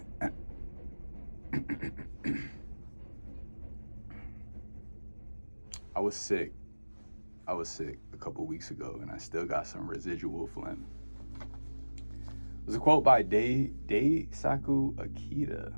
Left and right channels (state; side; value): inverted; both; correlation -1.00